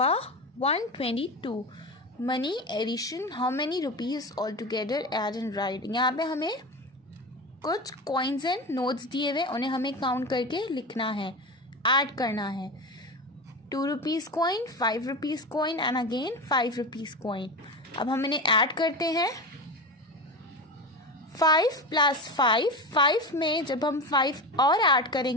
122. Money addition. How many rupees altogether add and write. यहाँ पे हमें कुछ coins एंड नोट्स दिए हुए, उन्हें हमें काउंट करके लिखना है, ऐड करना है. 2 rupees coin, 5 rupees coin and again 5 rupees coin. अब हम इन्हें ऐड करते हैं. 5 + 5, 5 में जब हम 5 और ऐड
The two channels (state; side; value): normal; both; correlation 0.24